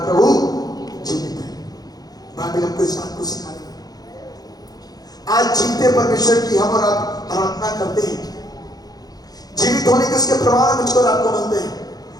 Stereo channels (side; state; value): right; late; 0.19 ms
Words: जीवित है। बाइबल हमको इस बात को सिखा रही है। आज जीवते परमेश्वर की हम और आप आराधना करते हैं, जीवित होने के उसके प्रमाण मुझको और आपको मिलते हैं।